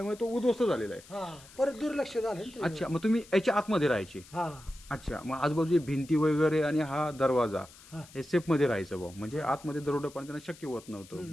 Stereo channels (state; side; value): noise; left; hiss, 22 dB below the sound